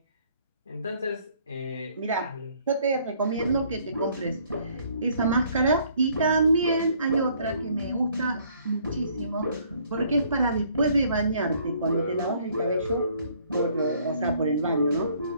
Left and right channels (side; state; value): both; inverted; correlation -0.62